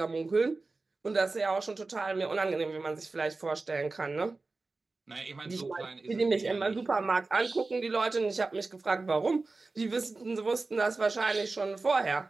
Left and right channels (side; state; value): left; quieter; 3.6 dB